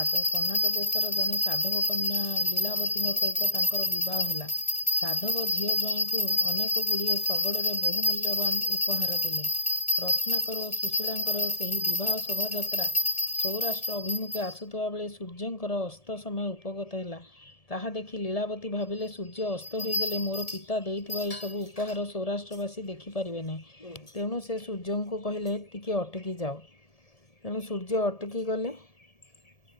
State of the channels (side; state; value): right; late; 1.7 ms